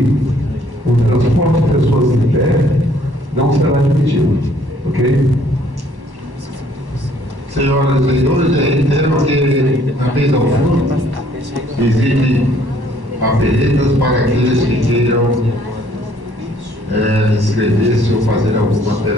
o transporte de pessoas em pé não será admitido, ok? Senhoras e senhores, eu reitero que na mesa ao fundo existem papeletas para aqueles que queiram inscrever-se ou fazer alguma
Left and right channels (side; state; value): left; late; 1.1 ms